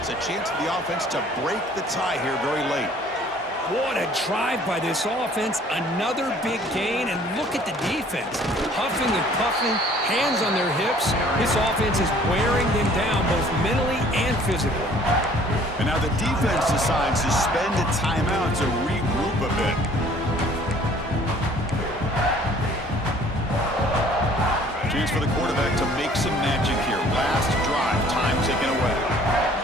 A chance for the offense to break the tie here very late. What a drive by this offense. Another big gain, and look at the defense. Huffing and puffing, hands on their hips. This offense is wearing them down both mentally and physically. And now the defense decides to spend a timeout to regroup a bit. Chance for the quarterback to make some magic here. Last drive, time taken away.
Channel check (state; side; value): normal; both; correlation 0.55